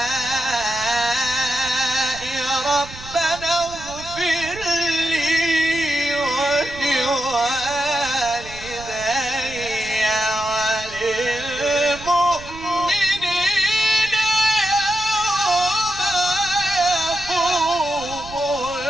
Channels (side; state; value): right; noise; rumble, 16 dB below the sound